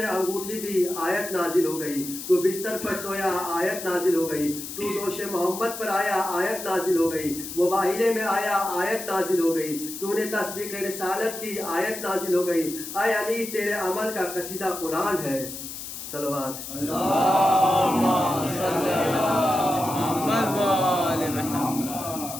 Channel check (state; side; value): noise; left; hiss, 9 dB below the sound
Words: انگوٹھی دی، آیت نازل ہو گئی۔ تو بستر پر سویا، آیت نازل ہو گئی۔ تو دوش محمد پر آیا، آیت نازل ہو گئی۔ مباہلے میں آیا، آیت نازل ہو گئی۔ تو نے تصدیق رسالت کی، آیت نازل ہو گئی۔ اے علی، تیرے عمل کا قصیدہ قرآن ہے۔ صلوات اللہم صلی